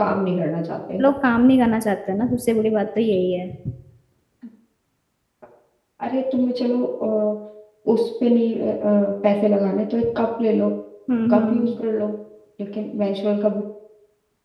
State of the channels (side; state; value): both; identical; correlation 1.00